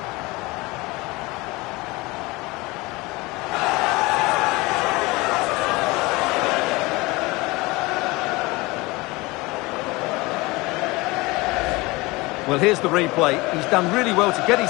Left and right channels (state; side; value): quieter; right; 23.1 dB